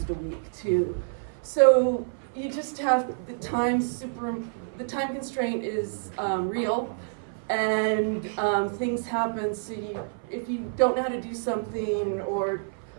a week too. So you just have the time constraint is real, and things happen. So if you don't know how to do something, or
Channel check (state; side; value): silent; left; 56 dB below the other